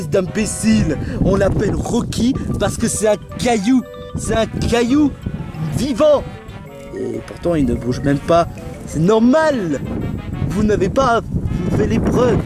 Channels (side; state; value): both; identical; correlation 1.00